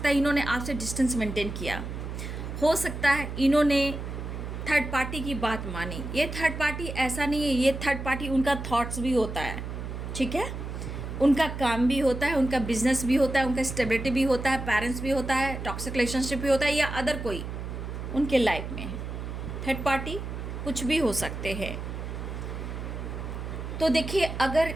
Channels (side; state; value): right; noise; hum, 7 dB below the sound